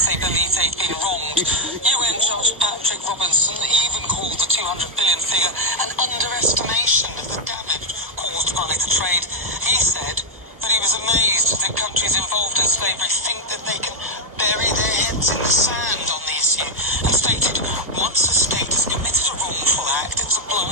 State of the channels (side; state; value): left; late; 1.1 ms